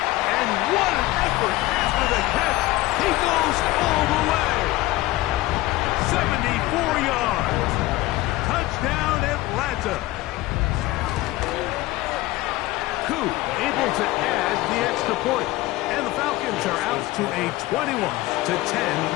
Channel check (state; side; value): quieter; right; 18.2 dB